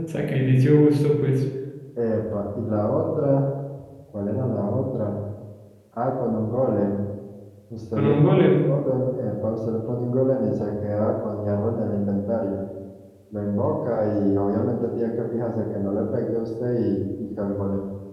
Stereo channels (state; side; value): identical; both; correlation 1.00